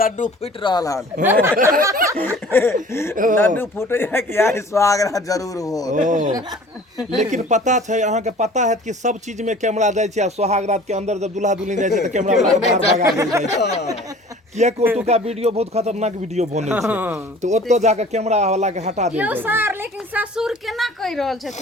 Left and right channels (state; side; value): normal; both; correlation 0.47